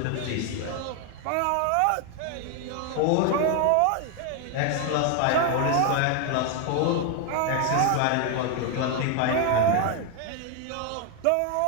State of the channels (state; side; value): different; both; correlation 0.01